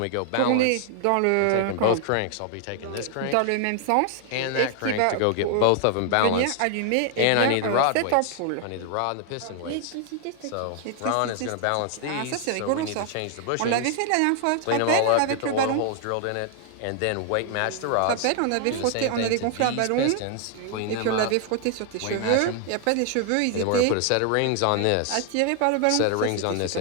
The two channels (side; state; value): both; different; correlation 0.00